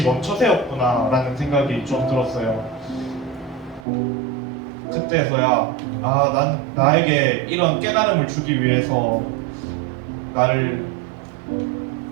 멈춰 세웠구나 라는 생각이 좀 들었어요. 그때서야 나에게 이런 깨달음을 주기 위해서 나를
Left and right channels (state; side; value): drops out; left; at 3.9 s